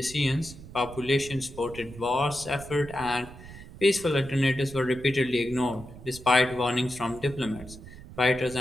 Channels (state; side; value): noise; right; rumble, 16 dB below the sound